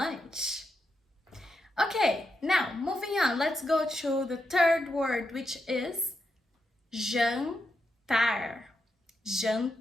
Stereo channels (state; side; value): normal; both; correlation 0.84